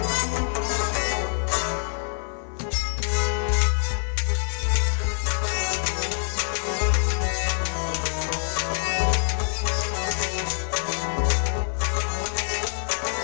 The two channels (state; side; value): silent; right; 58 dB below the other